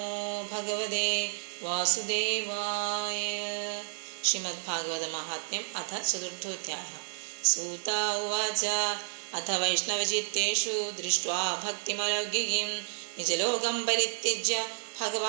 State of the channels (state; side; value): silent; left; 57 dB below the other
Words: ഭഗവതേ വാസുദേവായ. ശ്രീമദ് ഭാഗവത മഹാത്മ്യം അഥ ചതുർത്ഥോധ്യായഃ. സൂത ഉവാച അഥ വൈഷ്ണവചിത്തേഷു ദൃഷ്ട്വാ ഭക്തിമലൗകികീം നിജലോകം പരിത്യജ്യ